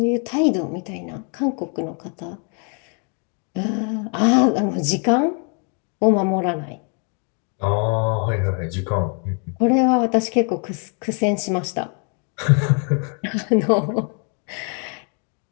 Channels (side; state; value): right; quieter; 39.0 dB